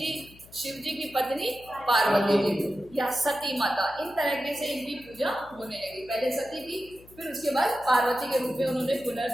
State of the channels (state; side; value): noise; left; hum, 23 dB below the sound